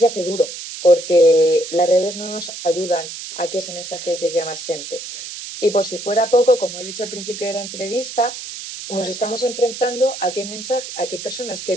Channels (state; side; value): noise; right; hiss, 10 dB below the sound